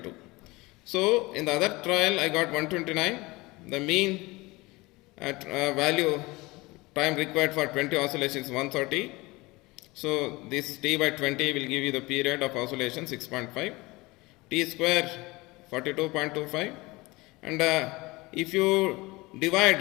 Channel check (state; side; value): quieter; right; 22.5 dB